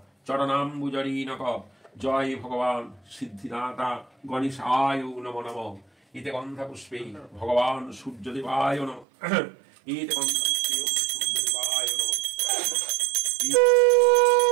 চরণাম্বুজরীনক। জয় ভগবান সিদ্ধিদাতা গণেশায় নমঃ নমঃ। এতে গন্ধা পুষ্পে ভগবান সূর্যদেবায় নমঃ। এতে গন্ধা পুষ্পে সূর্যদেবায় নমঃ।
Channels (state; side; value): drops out; left; at 9.1 s